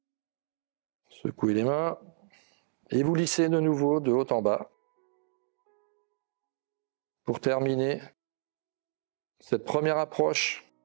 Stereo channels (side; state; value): left; silent; digital silence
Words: Secouez les mains et vous lissez de nouveau de haut en bas. Pour terminer cette première approche